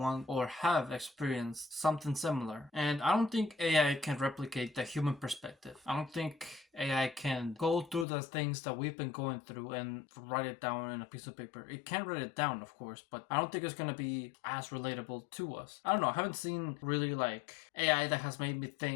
or have experienced something similar. And I don't think AI can replicate the human perspective. I don't think AI can go through the things that we've been going through and write it down in a piece of paper. It can write it down, of course, but I don't think it's gonna be as relatable to us. I don't know. I haven't seen really like AI that has made me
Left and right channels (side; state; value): right; drops out; at 8.1 s